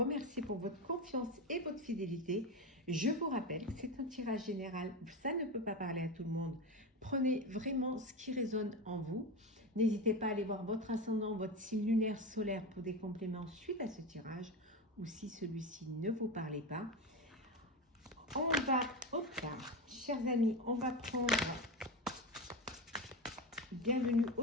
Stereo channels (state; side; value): normal; both; correlation 0.20